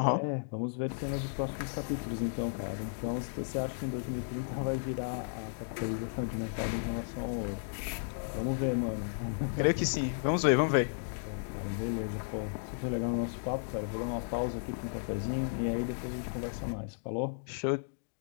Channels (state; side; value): silent; right; digital silence